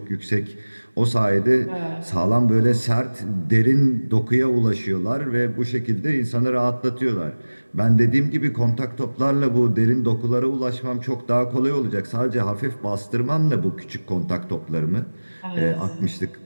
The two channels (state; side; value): inverted; both; correlation -1.00